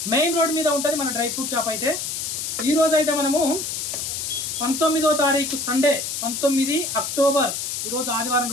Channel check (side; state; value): left; noise; hiss, 4 dB below the sound